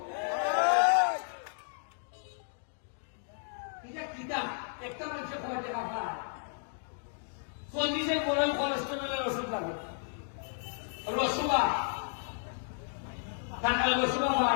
এটা কিতা একটা মানুষের কয় টাকা পায় 40 বড় কোলেস্টেরলের ওষুধ লাগে রসুবা টাকা রসুবা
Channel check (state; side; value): silent; right; digital silence